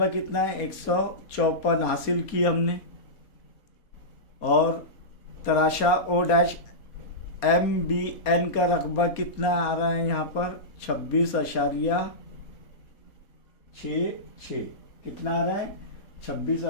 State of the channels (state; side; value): late; right; 4.2 ms